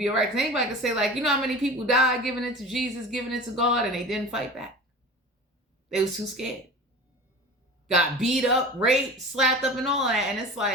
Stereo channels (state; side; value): normal; both; correlation 0.36